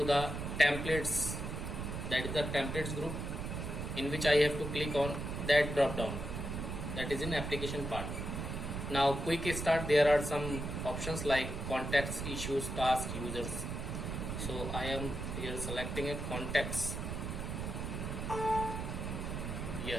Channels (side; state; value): right; noise; rumble, 4 dB below the sound